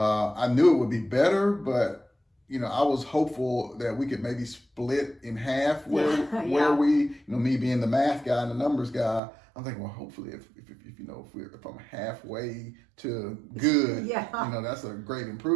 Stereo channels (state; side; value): drops out; left; at 9.2 s